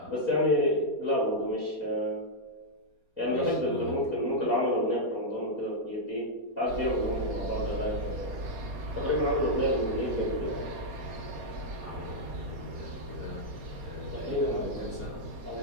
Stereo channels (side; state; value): left; late; 4.2 ms